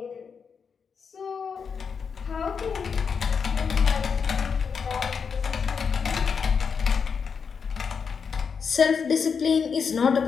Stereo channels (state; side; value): quieter; right; 6.1 dB